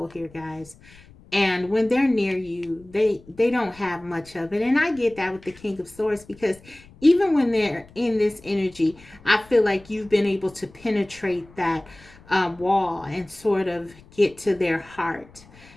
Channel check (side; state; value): left; noise; rumble, 24 dB below the sound